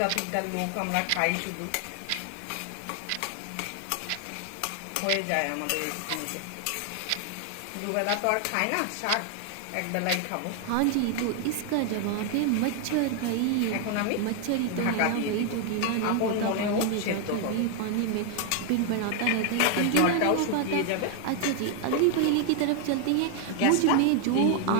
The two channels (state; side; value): different; both; correlation 0.00